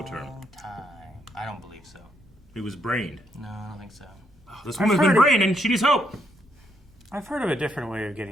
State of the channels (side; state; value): both; normal; correlation 0.75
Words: term. I don't believe so. He was brained. No, I don't think so. Oh, this woman's been brained and she needs help. I've heard of a different way of